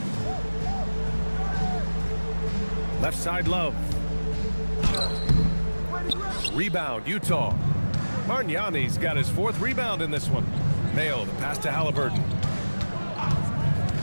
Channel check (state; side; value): inverted; both; correlation -1.00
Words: Left side Love. Rebound, Utah. Margnani's got his 4th rebound in this one. Mayo, the pass to Halliburton.